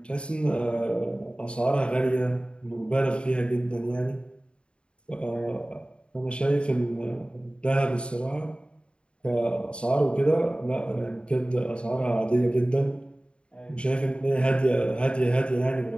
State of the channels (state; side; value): late; right; 0.055 ms